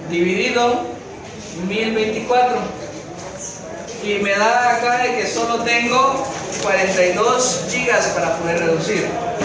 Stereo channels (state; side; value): identical; both; correlation 1.00